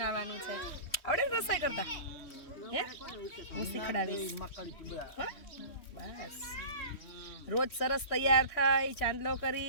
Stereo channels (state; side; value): late; right; 3.1 ms